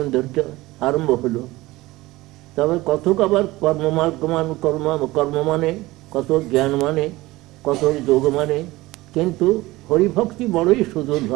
আরম্ভ হলো। তবে কতক আবার কর্ম মানে, কত জ্ঞান মানে, কত যোগ মানে, কিন্তু হরিভক্তি বড়ই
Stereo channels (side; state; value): left; quieter; 19.3 dB